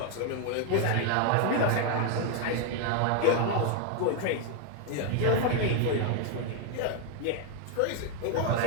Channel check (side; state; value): both; different; correlation 0.00